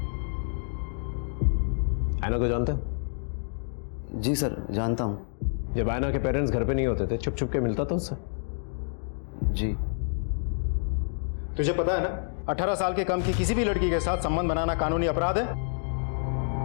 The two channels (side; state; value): right; silent; digital silence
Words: ऐना को जानते हो? जी सर, जानता हूँ। जब ऐना के पेरेंट्स घर पे नहीं होते थे छुप छुप के मिलता था उससे? जी। तुझे पता है ना, 18 साल के कम की किसी भी लड़की के साथ संबंध बनाना कानूनी अपराध है।